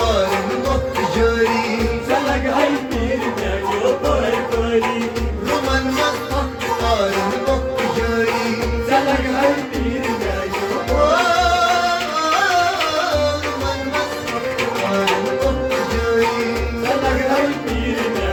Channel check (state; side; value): identical; both; correlation 1.00